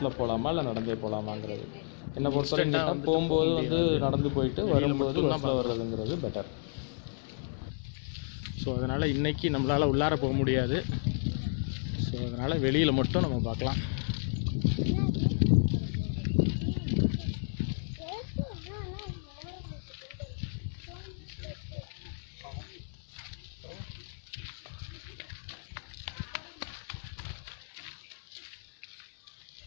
போகலாமா இல்லை நடந்தே போகலாமாங்கிறது. என்னை பொறுத்தவரைக்கும் போகும்போது வந்து நடந்து போயிட்டு வரும்போது பஸ்ஸில் வர்றதுங்கிறது பெட்டர். ஸோ அதனால் இன்றைக்கி நம்மளால் உள்ளார போக முடியாது. ஸோ அதனால் வெளியில் மட்டும் நம்ம பார்க்கலாம்.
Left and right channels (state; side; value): silent; right; 56 dB below the other